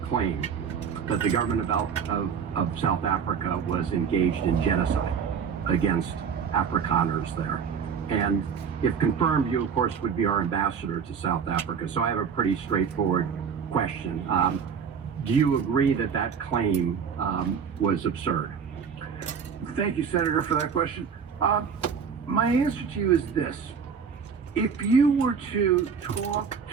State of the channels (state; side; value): quieter; left; 6.7 dB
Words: claim that the government of South Africa was engaged in genocide against Afrikaners there. And if confirmed, you, of course, would be our ambassador to South Africa. So I have a pretty straightforward question. Do you agree that that claim was absurd? Thank you, Senator, for that question. My answer to you is this. If you were to talk